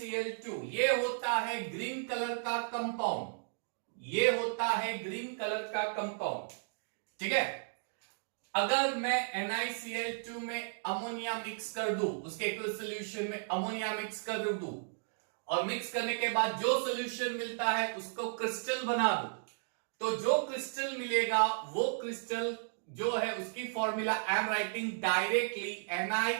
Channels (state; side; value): silent; left; digital silence